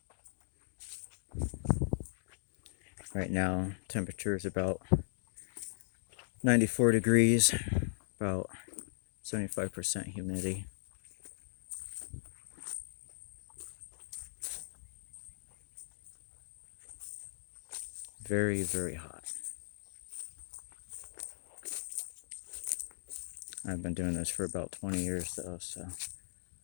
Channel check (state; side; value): silent; right; digital silence